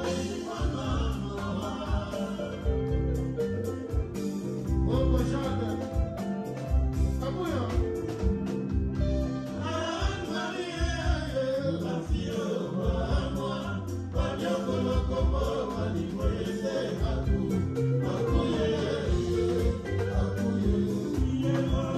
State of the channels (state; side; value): identical; both; correlation 1.00